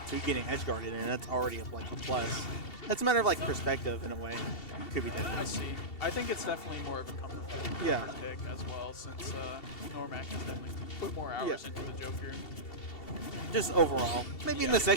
to getting edge guarded, and that's already like a plus. It's a matter of like perspective in a way. Could be different. I see. I think it's definitely more of a comfort pick as well, since Normac has definitely put more hours into the Joker. Just overall. Maybe in the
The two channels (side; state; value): right; late; 2.7 ms